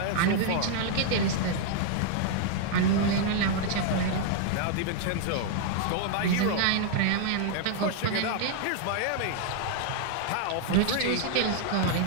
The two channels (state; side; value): different; both; correlation 0.00